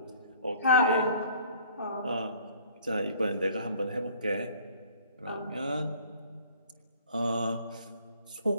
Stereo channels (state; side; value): inverted; both; correlation -0.53